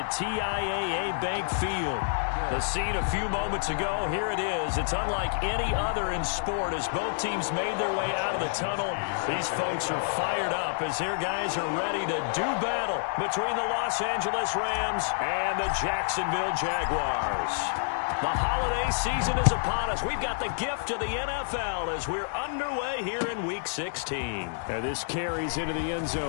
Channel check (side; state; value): right; silent; digital silence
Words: TIAA Bank Field. The scene a few moments ago, here it is. It's unlike any other in sport as both teams made their way out of the tunnel. These folks are fired up as their guys are ready to do battle between the Los Angeles Rams and the Jacksonville Jaguars. The holiday season is upon us. We've got the gift of the NFL as we're underway here in Week 16. And this carries into the end